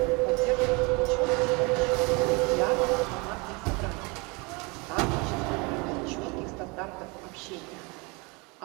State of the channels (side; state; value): left; quieter; 28.6 dB